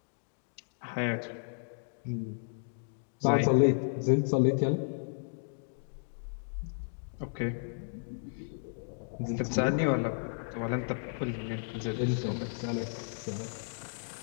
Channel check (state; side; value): silent; right; digital silence